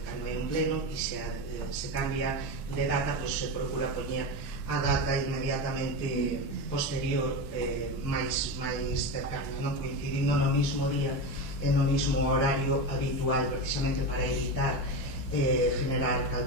cando é un pleno e se cambia de data, pois se procura poñer a data inmediatamente posterior, máis cercana, non coincidindo no mismo día e no mismo horario habitual, precisamente para evitar generar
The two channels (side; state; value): both; normal; correlation 0.19